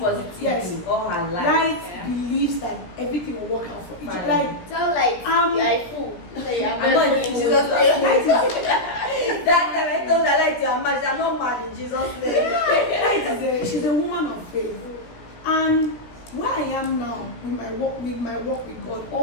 yes, all her life. Light believes that everything will work out for each other. Like, Tell Light you are a fool. I'm not in Jesus' name. That time I told her, Light, you are mad. I'm not mad in Jesus' name. Light she's a woman of faith. And where I am now with my work with God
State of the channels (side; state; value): right; late; 17 ms